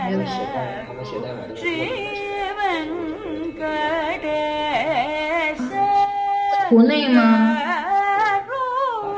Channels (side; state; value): both; identical; correlation 1.00